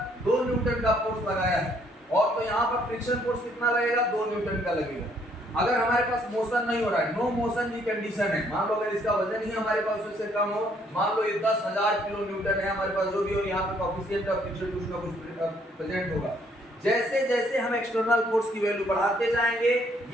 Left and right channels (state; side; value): normal; both; correlation 0.66